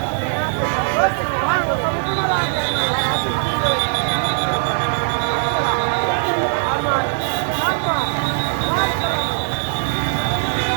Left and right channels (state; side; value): silent; left; 66 dB below the other